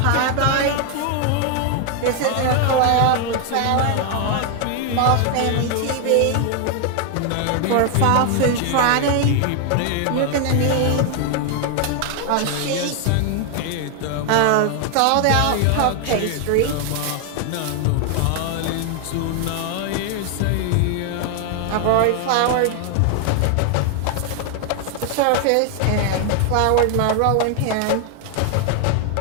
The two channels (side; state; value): both; different; correlation 0.00